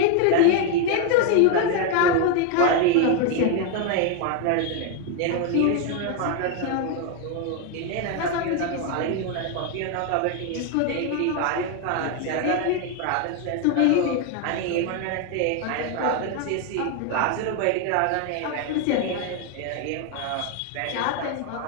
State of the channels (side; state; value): both; different; correlation 0.01